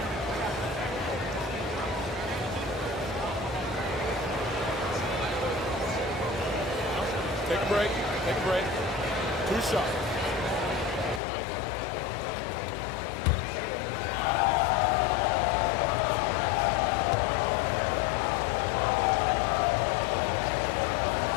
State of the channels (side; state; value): right; drops out; at 11.2 s